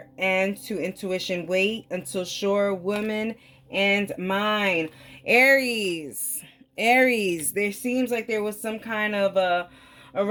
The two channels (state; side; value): identical; both; correlation 1.00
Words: and to intuition, wait until sure, woman and mine. Aries, there seems like there was some kind of a